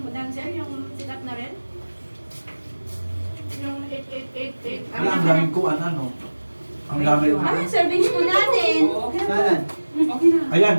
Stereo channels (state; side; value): inverted; both; correlation -1.00